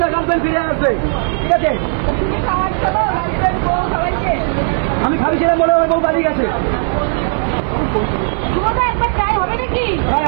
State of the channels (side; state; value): left; silent; 66 dB below the other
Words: তার গার্লফ্রেন্ড ফিরে আসবে ঠিক আছে আমি খাইছিলাম বলে আমার বউ পালিয়ে গেছে